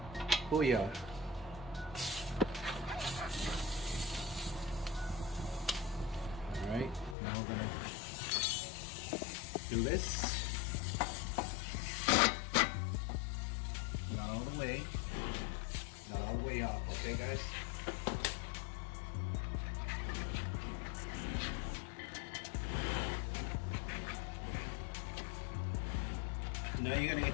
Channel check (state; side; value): drops out; right; at 7.2 s